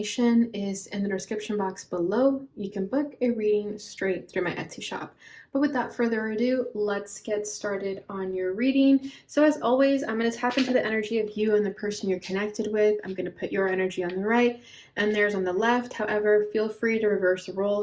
is in the description box below. You can book a reading straight through my Etsy shop. But without further ado, let's get started on your reading. So as always, I'm going to tap into the energy of you and the person you're connected with. I'm going to put your energy on the right and theirs on the left. However, feel free to reverse the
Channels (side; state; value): both; identical; correlation 1.00